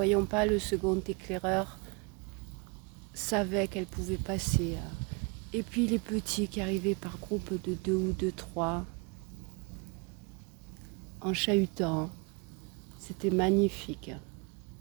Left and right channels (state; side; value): quieter; left; 31.1 dB